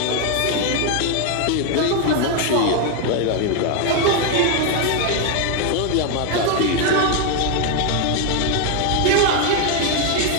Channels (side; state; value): both; different; correlation 0.01